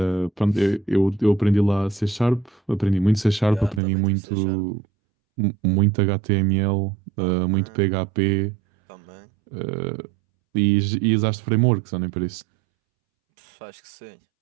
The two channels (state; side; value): drops out; left; at 3.8 s